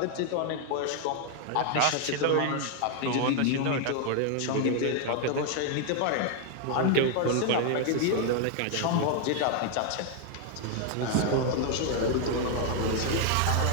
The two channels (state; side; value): different; both; correlation 0.00